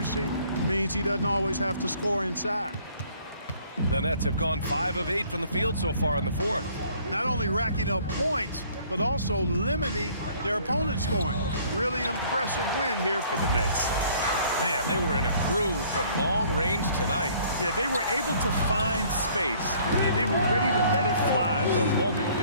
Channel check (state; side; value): inverted; both; correlation -0.58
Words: means he doesn't always have to score inside. The Nets have gone 5 of 8 from the field so far in the fourth. Not only racking up points, but also limiting their opponent's scoring. Really impressive win here for the Nets. Man, they were in a groove from long range tonight. Yeah, they were able to find space, and they were ready to let it fly the moment